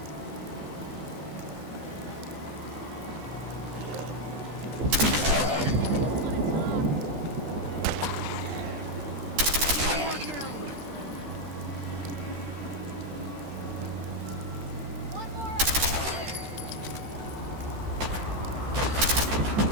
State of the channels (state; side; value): late; left; 13 ms